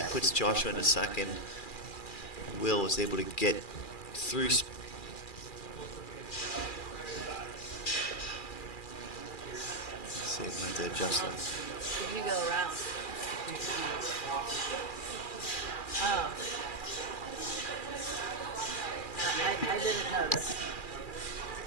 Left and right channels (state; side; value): late; right; 2.4 ms